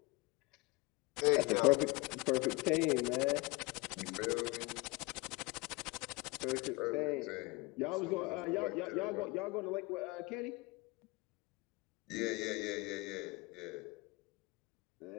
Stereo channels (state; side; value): quieter; right; 24.5 dB